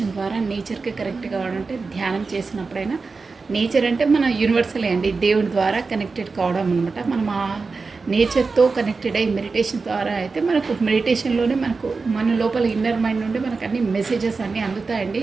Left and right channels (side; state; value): left; quieter; 4.3 dB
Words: ద్వారా నేచర్కి కనెక్ట్ కావాలంటే ధ్యానం చేసినప్పుడైనా, నేచర్ అంటే మన యూనివర్సలే అండి, దేవుడి ద్వారా కనెక్టెడ్ కావడం అనమాట. మనం ఆ నేచర్తో కనెక్టెడ్ అయ్యి మెడిటేషన్ ద్వారా అయితే మనకు మెడిటేషన్లోనే మన లోపల ఇన్నర్ మైండ్ నుండి మనకు అన్ని మెసేజెస్ అన్నీ